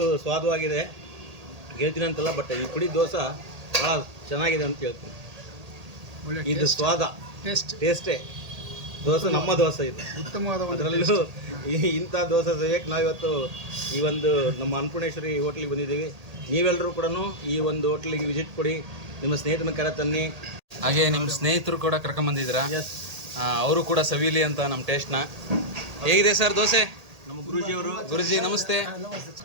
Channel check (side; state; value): left; late; 1.8 ms